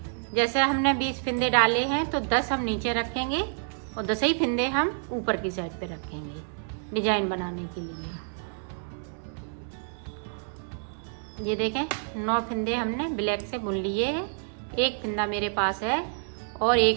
जैसे हमने 20 फिंदे डाले हैं तो 10 हम नीचे रखेंगे और 10 ही फिंदे हम ऊपर की साइड पे रखेंगे डिजाइन बनाने के लिए। ये देखें 9 फिंदे हमने ब्लैक से बुन लिए हैं। एक फिंदा मेरे पास है और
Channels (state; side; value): silent; left; 59 dB below the other